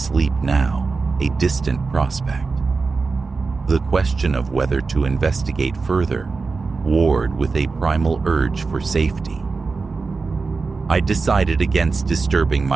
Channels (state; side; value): quieter; left; 4.3 dB